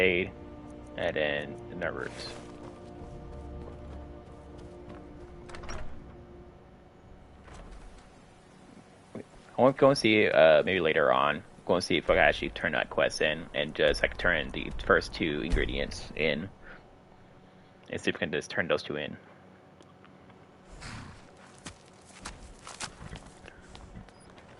and then Nervers. I want to go and see maybe later on. Go and see if I can actually turn that quest in and just like turn the first 2 ingredients in, and see if we can just turn those 2 in.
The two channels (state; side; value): identical; both; correlation 1.00